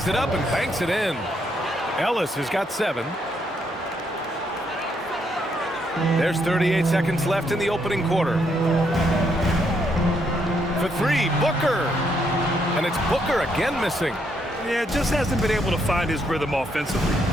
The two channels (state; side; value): normal; both; correlation 0.75